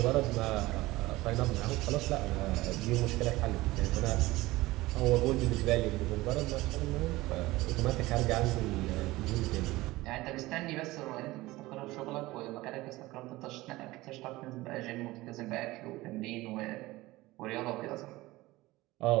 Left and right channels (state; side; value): quieter; left; 19.1 dB